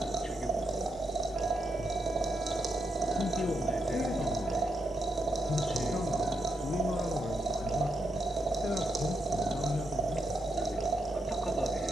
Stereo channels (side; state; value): both; normal; correlation 0.82